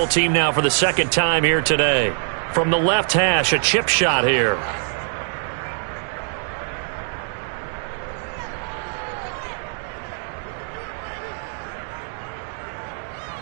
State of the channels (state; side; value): silent; left; 63 dB below the other